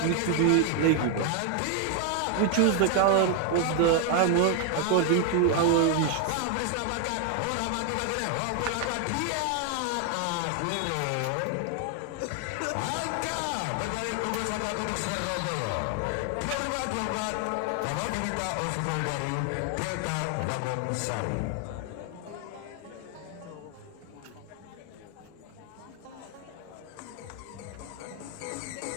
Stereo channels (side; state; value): both; different; correlation 0.01